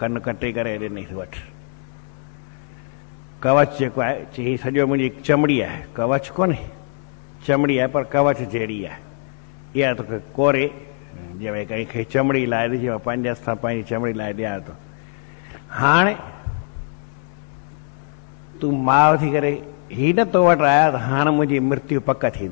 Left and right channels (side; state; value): right; silent; 64 dB below the other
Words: कटे करे ॾिनई, वठि कवच जेको आहे। चई हीअ सॼो मुंहिंजी चमड़ी आहे, कवच कोन्हे, चमड़ी आहे, पर कवच जहिड़ी आहे। इहा तोखे कोरे, जीअं भई कंहिंखे चमड़ी लाइ ॾिजे, मां पंहिंजे हथ सां पंहिंजी चमड़ी लाइ ॾियां थो। हाणे तूं माउ थी करे ही न तो वटि आया, त हाणे मुंहिंजी मृत्यु पक